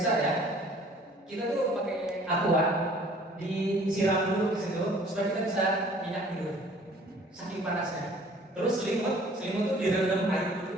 ya. Kita tuh pakai aqua, disiram dulu di situ supaya kita bisa nyenyak tidur. Saking panasnya. Terus selimut tuh direndam air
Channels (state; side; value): normal; both; correlation 0.53